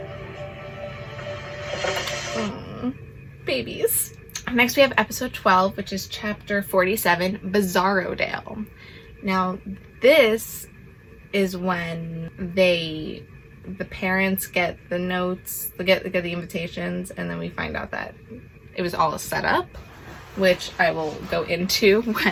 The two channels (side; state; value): both; identical; correlation 1.00